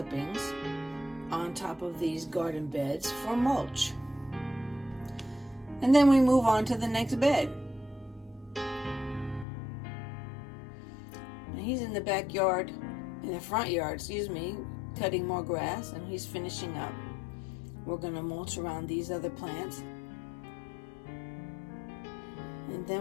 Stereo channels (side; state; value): right; drops out; at 9.5 s